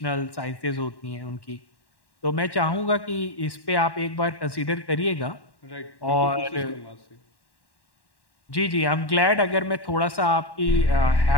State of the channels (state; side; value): late; right; 1.1 ms